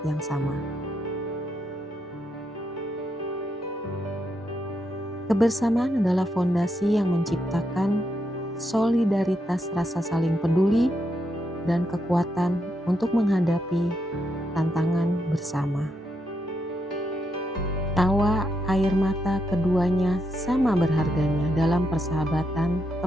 yang sama. Kebersamaan adalah fondasi yang menciptakan solidaritas rasa saling peduli dan kekuatan untuk menghadapi tantangan bersama. Tawa air mata keduanya sama berharganya dalam persahabatan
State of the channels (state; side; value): normal; both; correlation 0.80